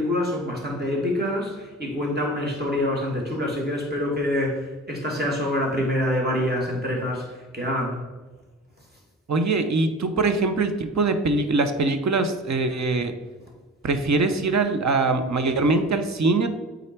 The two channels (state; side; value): normal; both; correlation 0.35